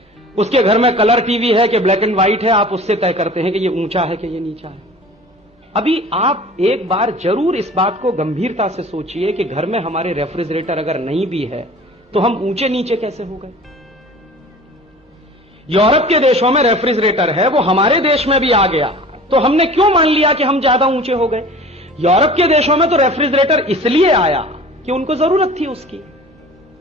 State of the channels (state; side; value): normal; both; correlation 0.42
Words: उसके घर में कलर टीवी है कि ब्लैक एंड व्हाइट है, आप उससे तय करते हैं कि ये ऊंचा है कि ये नीचा है। अभी आप एक बार जरूर इस बात को गंभीरता से सोचिए कि घर में हमारे रेफ्रिजरेटर अगर नहीं भी है तो हम ऊंचे नीचे कैसे हो गए। यूरोप के देशों में रेफ्रिजरेटर है, वो हमारे देश में भी आ गया, तो हमने क्यों मान लिया कि हम ज्यादा ऊंचे हो गए। यूरोप के देशों में तो रेफ्रिजरेटर इसलिए आया कि उनको जरूरत थी उसकी,